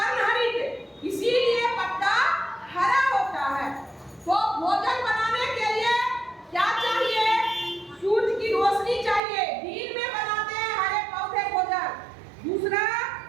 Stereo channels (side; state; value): left; drops out; at 9.2 s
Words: इसीलिए पत्ता हरा होता है। तो भोजन बनाने के लिए क्या चाहिए? सूरज की रोशनी चाहिए। दिन में बनाते हैं हरे पौधे भोजन। दूसरा,